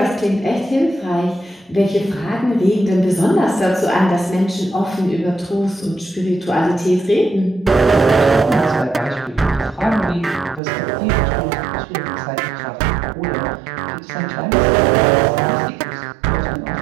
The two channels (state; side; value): drops out; left; at 10.6 s